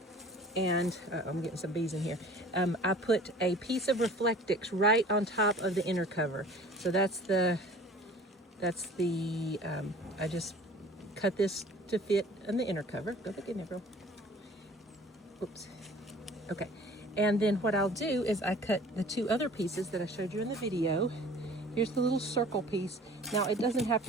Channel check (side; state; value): both; normal; correlation 0.47